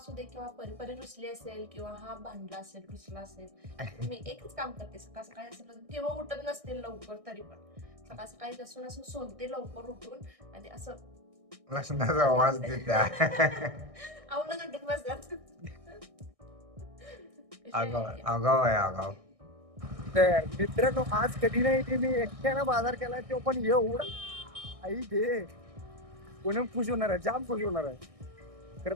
दे किंवा परी रुसली असेल किंवा हा भांडला असेल, रुसला असेल, मी एकच काम करते. सकाळ सकाळी असेल किंवा उठत नसते लवकर तरी पण सकाळ सकाळी लसूण असं सोलते लवकर उठून आणि असं लसणाचा आवाज देत्या. आवडून उठून बसतात. आगाव आहे आगाव. मित्रांनो, आज कधी नाही ते मी एकट्यानं बाजार केला, तो पण एवढा आई घे कोणी खुश होणार आहे, जाम खुश होणार आहे.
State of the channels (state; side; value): late; left; 1.6 ms